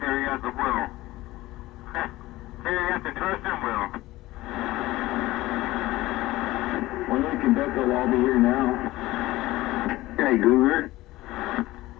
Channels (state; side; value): quieter; right; 17.9 dB